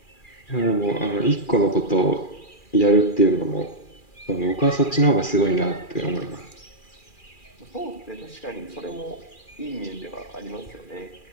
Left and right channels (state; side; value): late; right; 2.4 ms